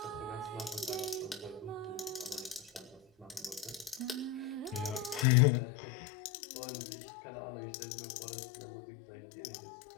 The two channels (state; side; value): drops out; right; at 5.2 s